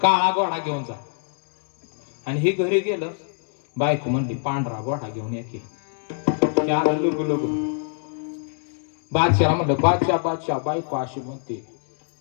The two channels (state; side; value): silent; right; digital silence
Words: काळा घोडा घेऊन जा. आणि हे घरी गेलं. बायको म्हणली पांढरा घोडा घेऊन ये की. त्याला लुगू लुगू. बादशाह म्हणलं बादशाह बादशाह बायको अशी म्हणते